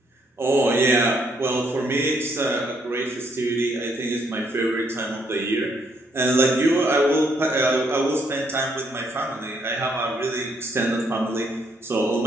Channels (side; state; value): both; normal; correlation 0.71